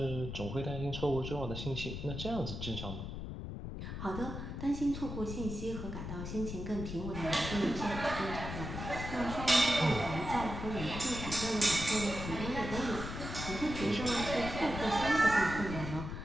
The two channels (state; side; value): noise; left; rumble, 6 dB below the sound